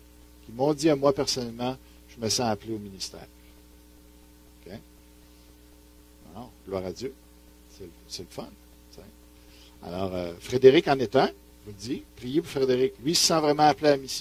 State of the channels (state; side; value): identical; both; correlation 1.00